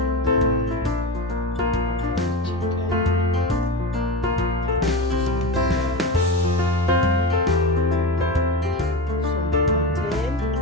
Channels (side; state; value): both; normal; correlation 0.23